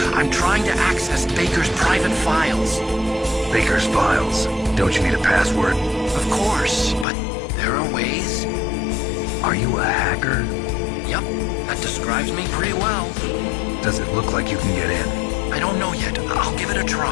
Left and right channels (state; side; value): drops out; right; at 7.1 s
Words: I'm trying to access Baker's private files. Baker's files? Don't you need a password? Of course, but there are ways. Are you a hacker? Yep, that describes me pretty well. Does it look like you can get in? I don't know yet. I'll give it a